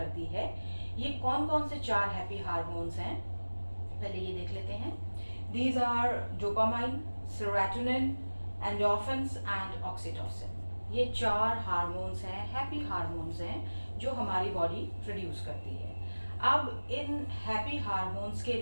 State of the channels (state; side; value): inverted; both; correlation -1.00